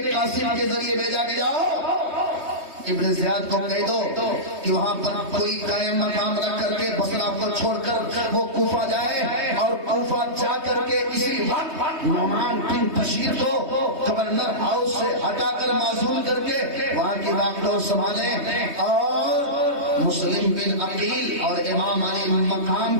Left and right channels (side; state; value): left; late; 3.2 ms